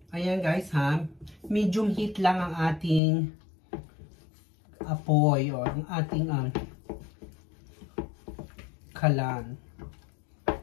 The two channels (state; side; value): drops out; right; at 3.0 s